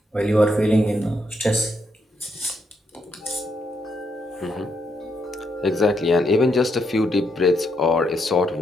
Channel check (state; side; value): normal; both; correlation 0.78